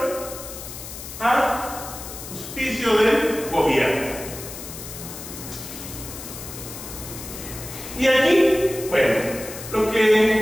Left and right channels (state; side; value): noise; left; hiss, 11 dB below the sound